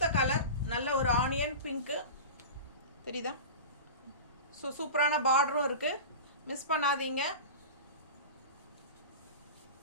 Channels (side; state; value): both; inverted; correlation -0.30